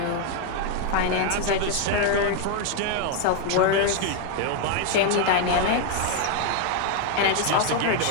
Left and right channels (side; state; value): both; different; correlation 0.00